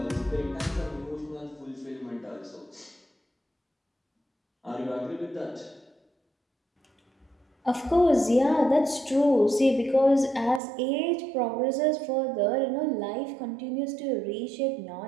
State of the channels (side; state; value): left; drops out; at 10.6 s